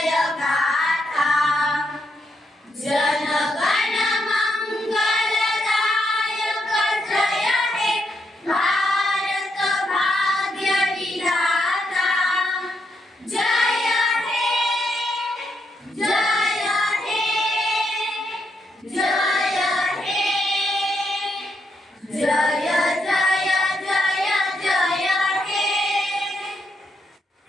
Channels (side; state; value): both; normal; correlation 0.79